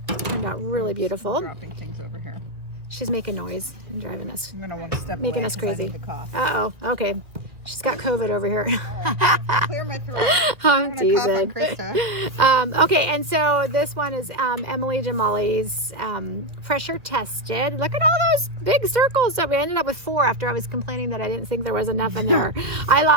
turned out really beautiful. Dropping things over here. She's making noise and driving us, I'm gonna want to step making away us crazy. I need to cough. Uh-oh. Okay. She's got COVID over here. Clear my throat. I'm teasing. Okay, and so this one is Emily Jamali's Pressure Tested. Look at all those big circles. So we ended up with 4 after I was complaining that I didn't think there was enough in there. I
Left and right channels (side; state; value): left; late; 1.9 ms